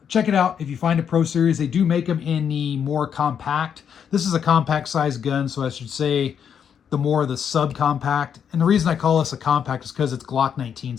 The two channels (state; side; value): quieter; right; 7.9 dB